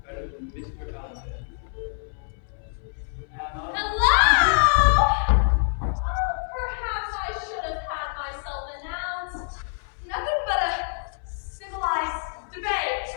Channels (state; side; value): silent; right; 61 dB below the other